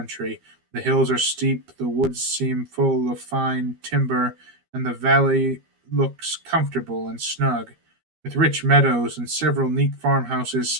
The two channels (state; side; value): late; left; 13 ms